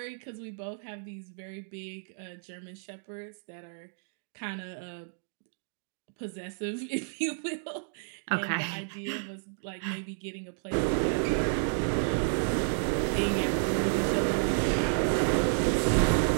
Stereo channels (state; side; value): silent; left; digital silence